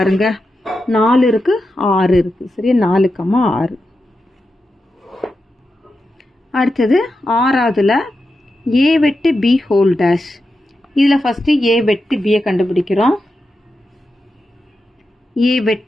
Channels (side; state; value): both; normal; correlation 0.89